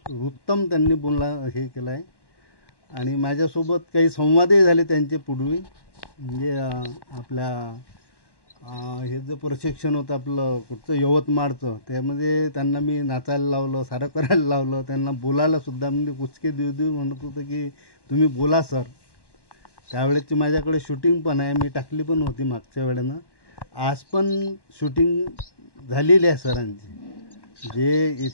उत्तम त्यांनी बोलला हे केलं आहे. आणि माझ्यासोबत काही संवादही झाले त्यांचे पूर्वी, म्हणजे आपल्या हे जे प्रशिक्षण होतं आपलं कुठचं यवतमाळचं, त्यामध्ये त्यांना मी नाचायला लावलं, सारं करायला लावलं, त्यांना बोलायलासुद्धा म्हणजे कुचके देऊ म्हणत होतं की तुम्ही बोला सर. त्यावेळेची माझ्याकडे शूटिंग पण आहे, मी टाकली पण होती मागच्या वेळेनं. आज पण शूटिंग झालेली आहे सरांची. जे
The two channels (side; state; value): right; late; 1.1 ms